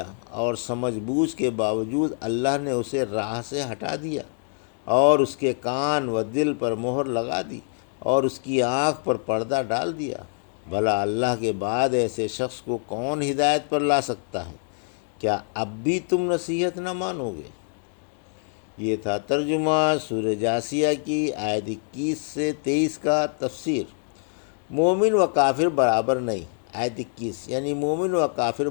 اور سمجھ بوجھ کے باوجود اللہ نے اسے راہ سے ہٹا دیا اور اس کے کان و دل پر مہر لگا دی اور اس کی آنکھ پر پردہ ڈال دیا؟ بھلا اللہ کے بعد ایسے شخص کو کون ہدایت پر لا سکتا ہے؟ کیا اب بھی تم نصیحت نہ مانو گے؟ یہ تھا ترجمہ سورہ جاثیہ کی آیت 21 سے 23 کا تفسیر۔ مومن و کافر برابر نہیں۔ آیت 21 یعنی مومن و کافر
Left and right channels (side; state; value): right; silent; 62 dB below the other